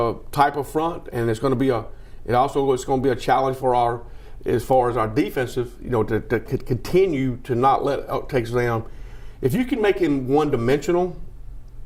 type of front, and it's going to be a challenge for as far as our defensive, to continue to not let Texas A&M. If you can make him one-dimensional,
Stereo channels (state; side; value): identical; both; correlation 1.00